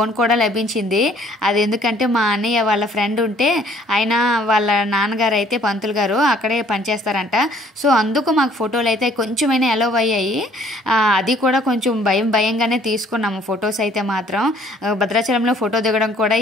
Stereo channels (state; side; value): normal; both; correlation 0.59